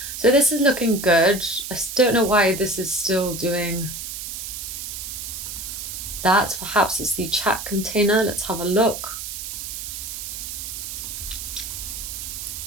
So this is looking good. I don't know why this is still doing that. Perhaps it's the chat container. Let's have a look.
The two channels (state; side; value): noise; right; hiss, 7 dB below the sound